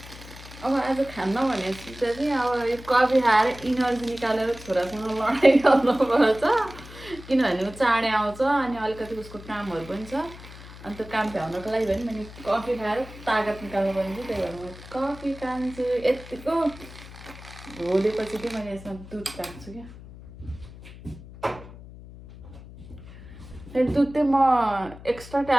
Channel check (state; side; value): noise; left; hum, 16 dB below the sound